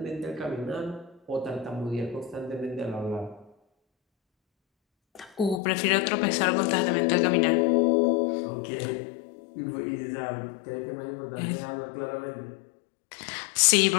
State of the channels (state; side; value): drops out; right; at 5.6 s